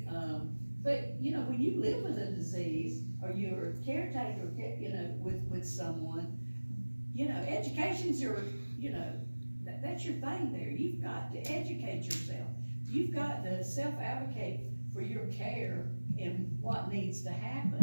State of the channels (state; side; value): inverted; both; correlation -1.00